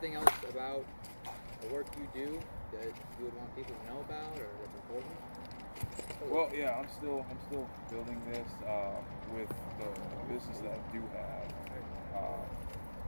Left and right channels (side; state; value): both; inverted; correlation -1.00